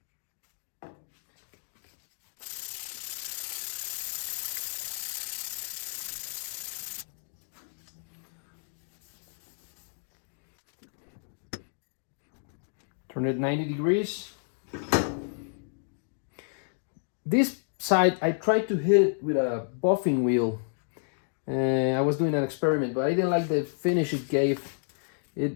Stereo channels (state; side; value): silent; right; digital silence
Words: Turn it 90 degrees. This side, I tried to hit it with a buffing wheel. I was doing an experiment, but I didn't like the finish it gave.